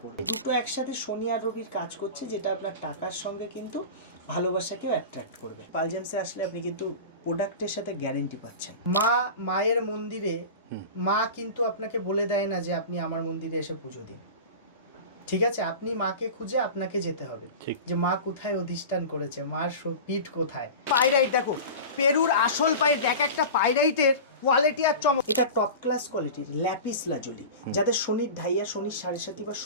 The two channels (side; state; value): both; inverted; correlation -0.31